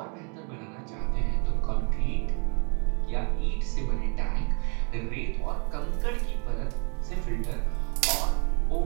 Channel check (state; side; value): quieter; left; 36.9 dB